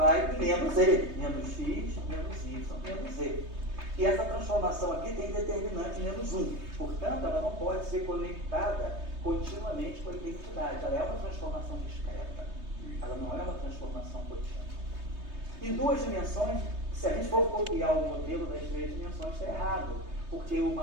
em menos z, menos x, menos y, menos z. E essa transformação aqui tem determinante menos 1. Portanto, ela não pode ser conectada continuamente com a identidade. Ela é uma transformação discreta. Ela não é uma transformação contínua. Em duas dimensões, se a gente for copiar o modelo das três dimensões, está errado. Porque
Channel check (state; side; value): late; left; 3.2 ms